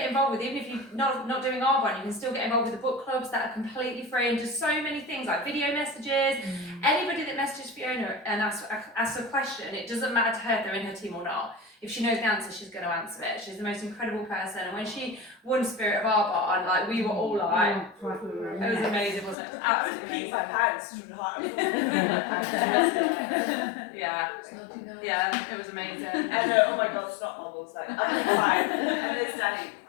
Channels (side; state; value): right; drops out; at 19.4 s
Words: involved with. Even if you're not doing Arbonne, you can still get involved with the book clubs that are completely free, and just so many things like video messages. Anybody that messages Fiona and asks a question, it doesn't matter to her if they're in her team or not. If she knows the answer, she's going to answer it. She's the most incredible person. And when she won Spirit of Arbonne, like, we were all like, it was amazing, wasn't it? It was absolutely amazing. My pants through the heart. Yeah, it was amazing. And oh my God, snot bubbles, like, I'm fine. And there's Danny